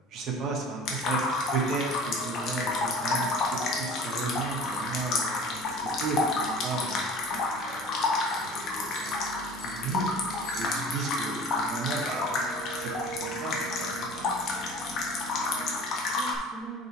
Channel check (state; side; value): normal; both; correlation 0.43